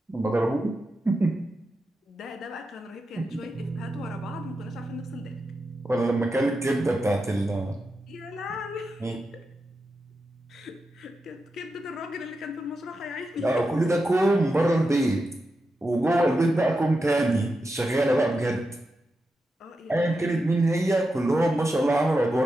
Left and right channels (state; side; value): normal; both; correlation 0.89